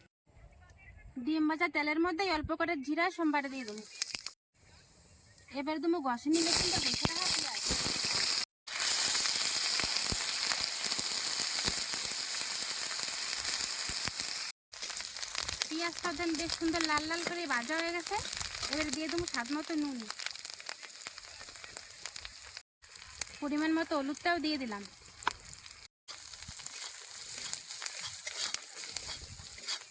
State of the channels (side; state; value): both; identical; correlation 1.00